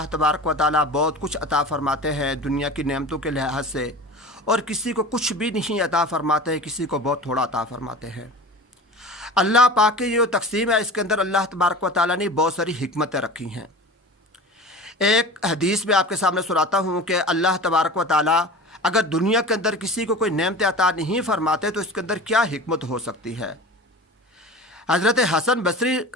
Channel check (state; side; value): normal; both; correlation 0.35